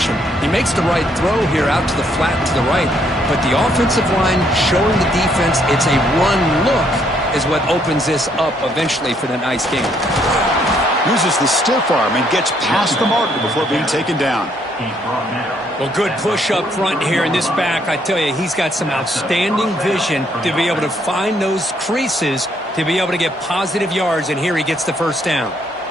He makes the right throw here out to the flat to the right, but the offensive line showing the defense it's a run look is what opens this up eventually for the nice game. Uses the stiff arm and gets past the marker before being taken down. Well, good push up front here in this back. I tell you, he's got some outstanding vision to be able to find those creases to be able to get positive yards, and here he gets the first down.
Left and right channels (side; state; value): both; normal; correlation 0.70